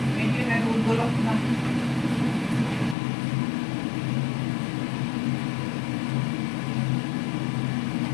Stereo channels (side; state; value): right; drops out; at 3.0 s